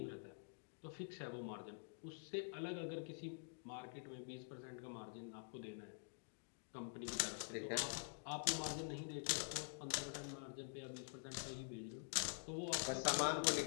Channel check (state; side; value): silent; right; digital silence